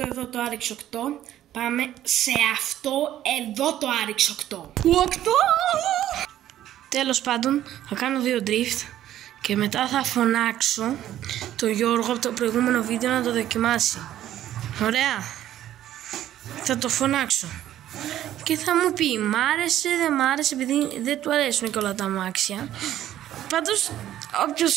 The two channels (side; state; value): left; quieter; 12.4 dB